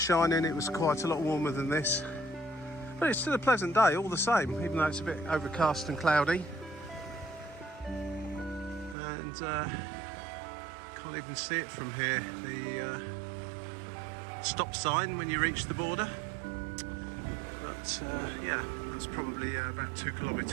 shining, it was quite a lot warmer than this. But it's still a pleasant day all the same, even though it's a bit overcast and cloudy. And Can't even see it from here. The stop sign when you reach the border. But yeah, that's probably about 2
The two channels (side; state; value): left; drops out; at 9.0 s